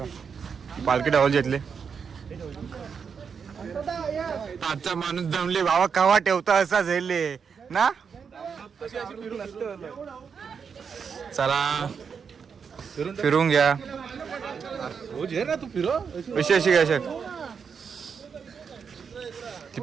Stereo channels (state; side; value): quieter; left; 6.3 dB